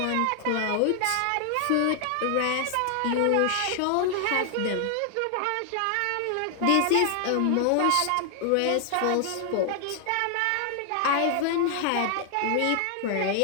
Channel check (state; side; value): different; both; correlation 0.00